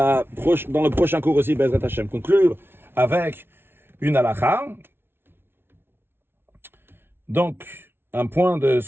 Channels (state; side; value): late; left; 0.11 ms